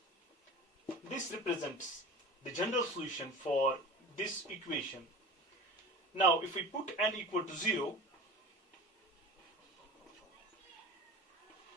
This represents the general solution for this equation. Now if we put n equal to 0,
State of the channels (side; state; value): both; normal; correlation 0.35